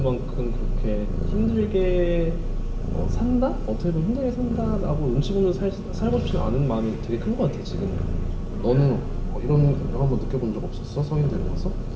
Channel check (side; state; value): both; identical; correlation 1.00